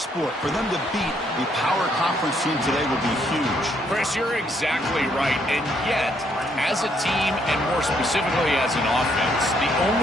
For them to beat a power conference team today would be huge. Chris, you're exactly right. And yet, as a team, and more specifically as an offense, the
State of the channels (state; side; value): normal; both; correlation 0.71